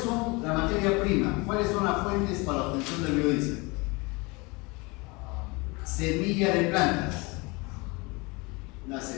son la materia prima? ¿Cuáles son las fuentes para la obtención del biodiesel? Semilla de plantas. Las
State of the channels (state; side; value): quieter; right; 26.5 dB